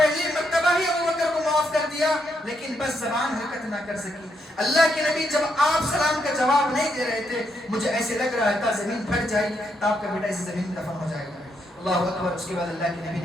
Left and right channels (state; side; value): normal; both; correlation 0.78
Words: مرتبہ ہی ابوبکر کو معاف کر دیا لیکن بس زبان حرکت نہ کر سکی. اللہ کے نبی جب آپ سلام کا جواب نہیں دے رہے تھے مجھے ایسے لگ رہا تھا زمین پھٹ جائے گی, آپ کا بیٹا اسی زمین میں دفن ہو جائے گا. اللہ اکبر. اس کے بعد اللہ کے نبی